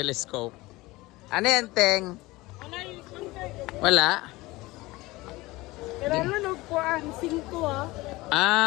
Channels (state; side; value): quieter; right; 20.6 dB